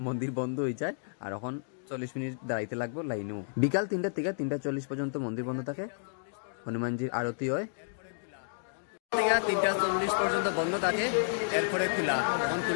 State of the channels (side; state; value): right; silent; digital silence